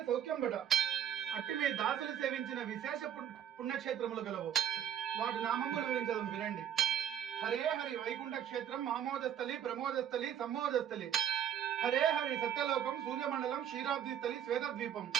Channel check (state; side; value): quieter; left; 9.6 dB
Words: సౌఖ్యంబట అట్టి మీ దాసులు సేవించిన విశేష పుణ్యక్షేత్రములు గలవు వాటి నామంబులు వివరించడం వినండి. హరే హరి వైకుంఠ క్షేత్రం ఆమోదస్థలి ప్రమోదస్థలి సమ్మోదస్థలి. హరే హరి సత్యలోకం సూర్యమండలం క్షీరాబ్దిస్థలి శ్వేతద్వీపం.